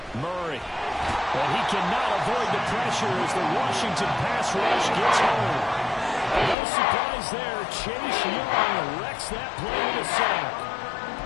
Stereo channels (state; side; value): drops out; right; at 6.6 s